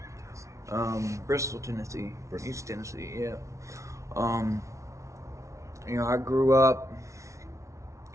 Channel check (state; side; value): late; left; 0.14 ms